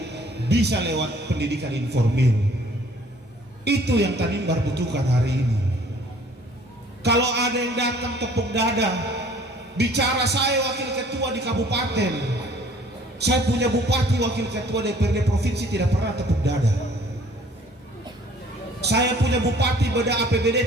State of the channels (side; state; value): both; normal; correlation 0.55